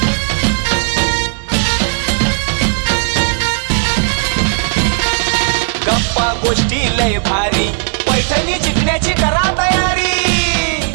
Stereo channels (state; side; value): silent; left; 70 dB below the other